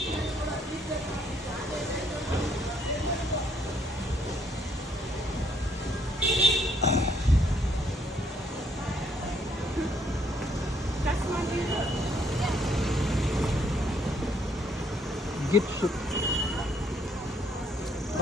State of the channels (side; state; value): both; normal; correlation 0.68